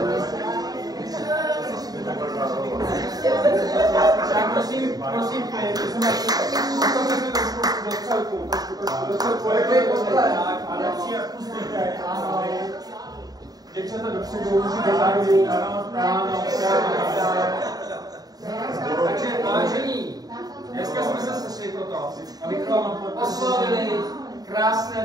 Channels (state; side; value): late; left; 0.18 ms